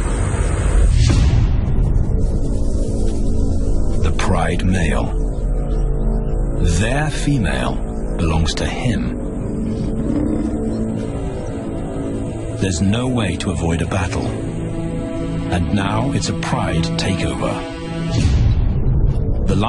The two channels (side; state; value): both; identical; correlation 1.00